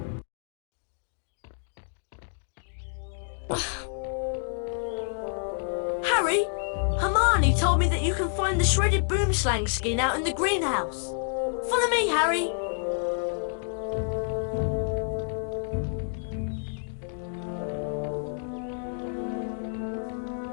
Harry, Hermione told me that you can find the shredded boomslang skin out in the greenhouse. Follow me, Harry.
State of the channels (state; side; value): silent; right; digital silence